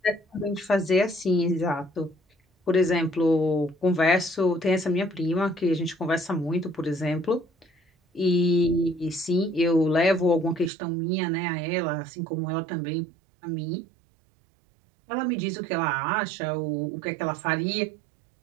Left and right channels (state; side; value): drops out; left; at 10.7 s